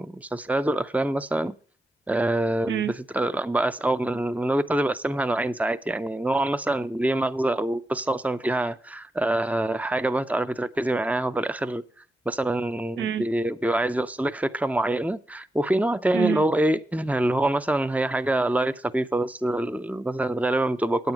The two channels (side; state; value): both; normal; correlation 0.87